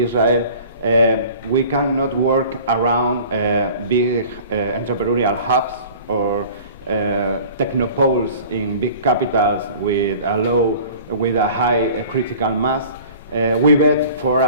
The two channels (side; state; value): both; inverted; correlation -0.45